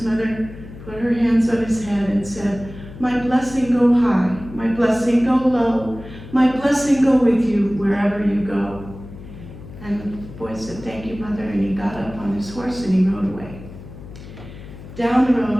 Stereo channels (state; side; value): noise; left; hum, 15 dB below the sound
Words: mother put her hands on his head and said, my blessing go high, my blessing go low, my blessing go with you wherever you go. And the boy said, thank you, mother, and he got up on his horse and he rode away. Down the